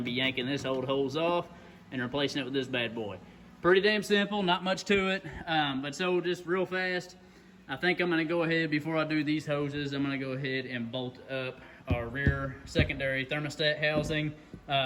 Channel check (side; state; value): both; identical; correlation 1.00